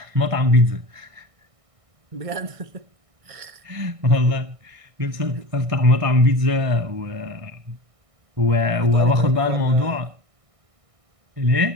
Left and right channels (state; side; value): late; left; 1.6 ms